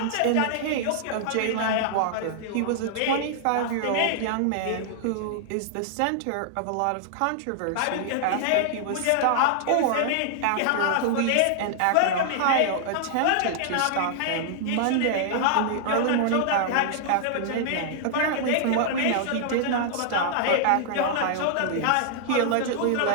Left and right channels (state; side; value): different; both; correlation -0.01